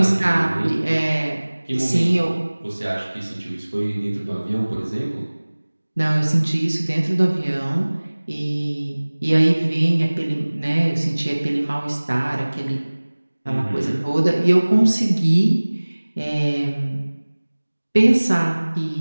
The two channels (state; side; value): inverted; both; correlation -1.00